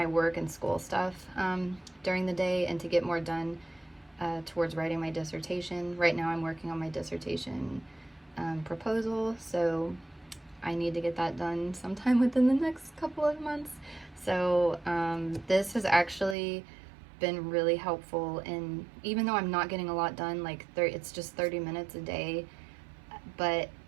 work and school stuff during the day and to get more done towards writing my dissertation. Right now I'm working on my dissertation proposal, so I need to get that done sometime within the next couple of months. So this has actually been really helpful, and even though I'm not getting a lot done, like it's just 30 minutes a day, but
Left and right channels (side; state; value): left; drops out; at 16.4 s